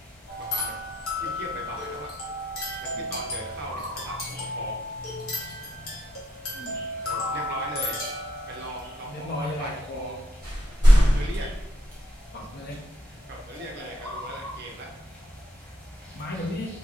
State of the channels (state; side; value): normal; both; correlation 0.73